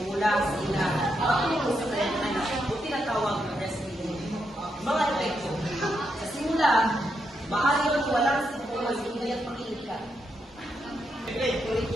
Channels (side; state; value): both; normal; correlation 0.82